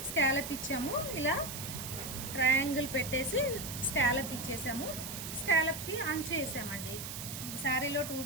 స్కాలప్ ఇచ్చాము, ఇలా ట్రయాంగిల్ పెట్టేసి స్కాలప్ ఇచ్చేసాము. స్కాలప్కి అంచు వేసామండి. శారీలో 2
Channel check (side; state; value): right; noise; hiss, 7 dB below the sound